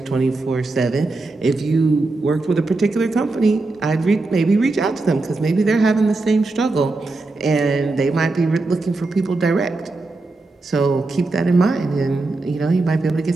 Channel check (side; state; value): left; quieter; 3.3 dB